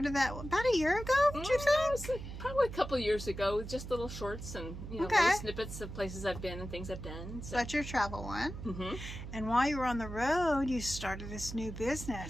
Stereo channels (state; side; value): noise; right; hum, 9 dB below the sound